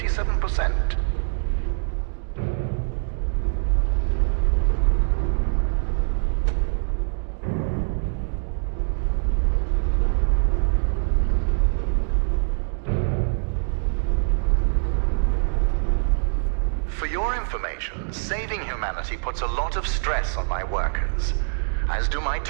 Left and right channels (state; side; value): silent; left; digital silence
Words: Saving humanity puts a lot of stress on my workers, as do my